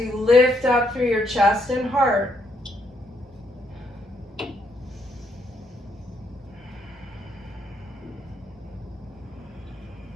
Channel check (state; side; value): normal; both; correlation 0.74